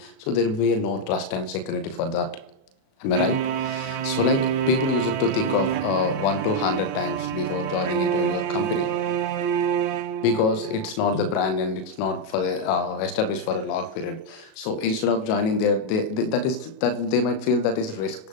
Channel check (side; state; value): right; late; 37 ms